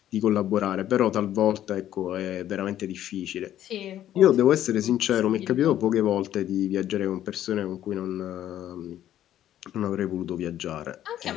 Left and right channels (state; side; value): quieter; right; 11.8 dB